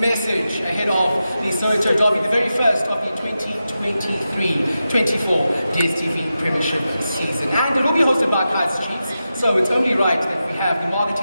ahead of the Soweto Derby, the very first of the 2023-24 DStv Premiership season. And it will be hosted by Kaizer Chiefs, so it's only right that we have the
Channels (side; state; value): both; inverted; correlation -0.91